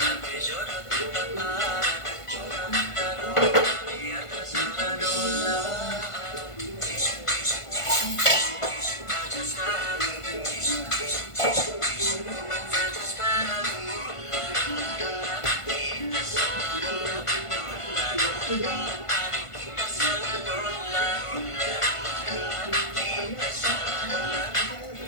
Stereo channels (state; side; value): late; right; 1.5 ms